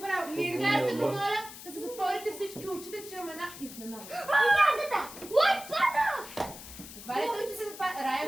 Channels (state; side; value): noise; left; hiss, 14 dB below the sound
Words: Сега ще помоля да се затворите всички очите, че имаме една изненада. Ядата! Лойдата! Затваряйте очите, затваряйте. Рая,